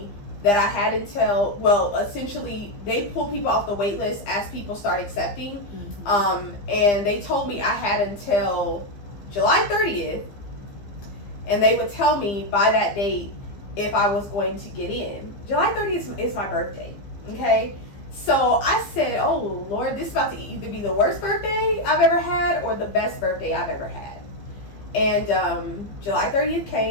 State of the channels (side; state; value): right; late; 15 ms